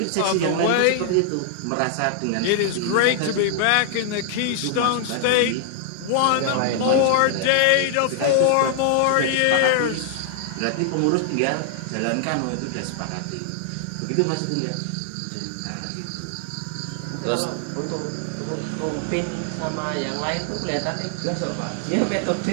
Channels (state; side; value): different; both; correlation -0.01